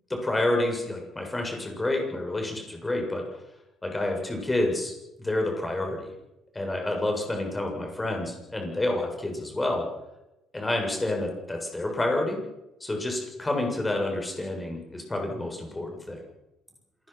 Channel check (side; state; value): both; normal; correlation 0.88